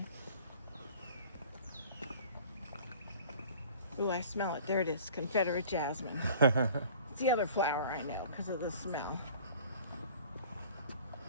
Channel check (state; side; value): inverted; both; correlation -0.47